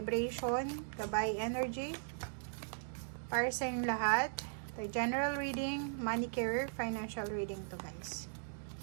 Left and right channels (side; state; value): left; silent; digital silence